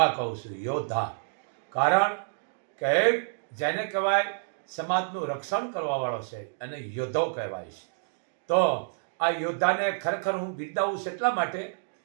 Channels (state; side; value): silent; left; digital silence